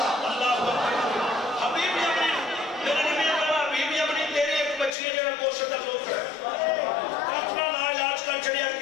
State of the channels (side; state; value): right; drops out; at 5.0 s